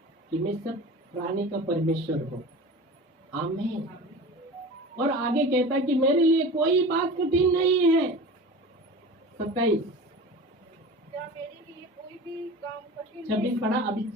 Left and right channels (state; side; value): normal; both; correlation 0.35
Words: कि मैं सब प्राणी का परमेश्वर हूँ। आमीन। और आगे कहता है कि मेरे लिए कोई बात कठिन नहीं है। 27 क्या मेरे लिए कोई भी काम कठिन 26 पढ़ा, अभी